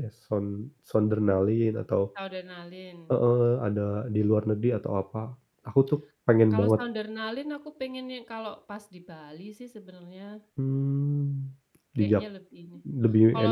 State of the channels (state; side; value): identical; both; correlation 1.00